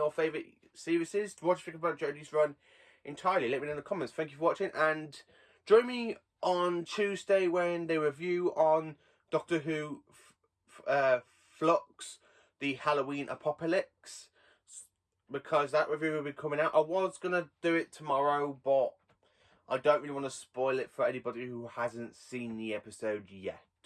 favourite series? What do you think about Jodie's run entirely? Let me know in the comments. Thank you for watching, and join me on Tuesday when they review on Doctor Who Flux, the Halloween Apocalypse, because that review will be coming out. I was going to do it tomorrow, but I don't really want to spoil it for anybody who hasn't seen the episode yet.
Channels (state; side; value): identical; both; correlation 1.00